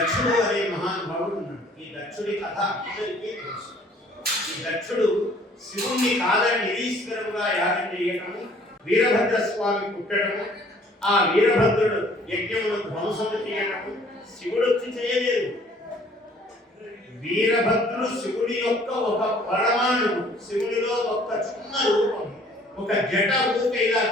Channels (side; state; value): both; normal; correlation 0.57